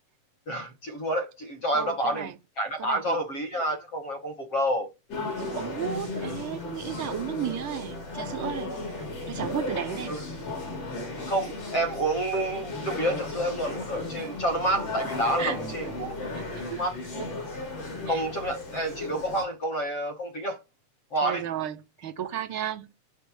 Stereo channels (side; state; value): right; late; 7.4 ms